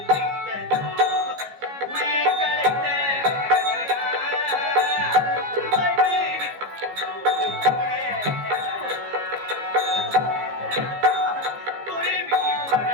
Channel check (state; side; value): late; left; 15 ms